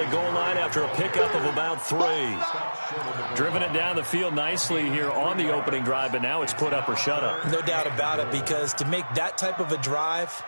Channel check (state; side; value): inverted; both; correlation -1.00